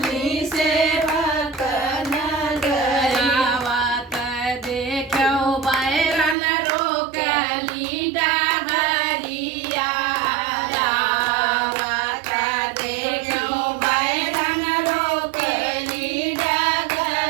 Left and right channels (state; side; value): drops out; left; at 6.4 s